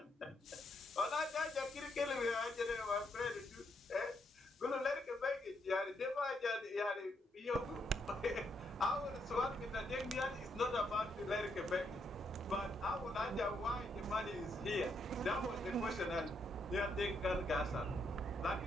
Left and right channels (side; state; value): both; normal; correlation 0.77